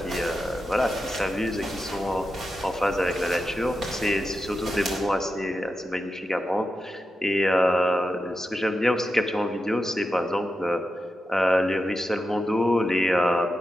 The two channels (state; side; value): normal; both; correlation 0.89